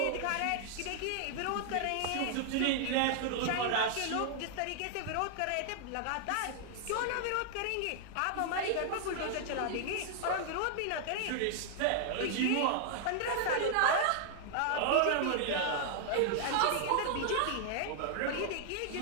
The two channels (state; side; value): different; both; correlation -0.01